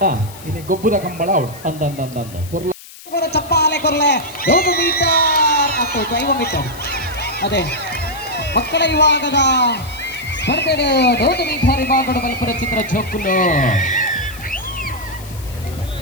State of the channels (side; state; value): left; noise; hiss, 18 dB below the sound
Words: ಇನಿ ಗೊಬ್ಬುದ ಕಂಬಳ ಅವಳು ಅಂದ ಚಪ್ಪಾಲೆ ಕೊರ್ಲೆ 100 ಮೀಟರ್ ಮತ್ತು 5 ಮೀಟರ್ ಅದೇ ಮಕ್ಕಳ ವಿಭಾಗದ ಸ್ಪರ್ಧೆಗೆ 100 ಮೀಟರ್ ವಿಭಾಗದ ಬಲ್ಪುರ ಚಿತ್ರ ಜೋಕುಲು